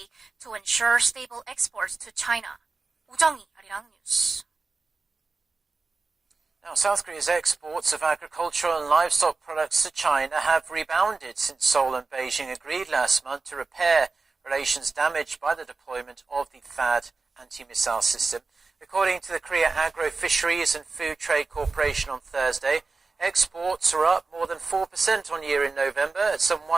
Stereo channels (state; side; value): quieter; left; 4.0 dB